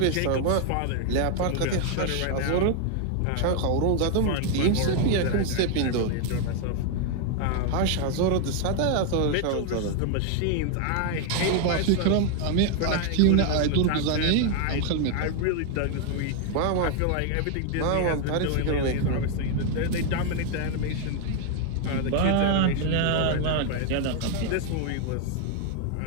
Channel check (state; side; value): different; both; correlation 0.00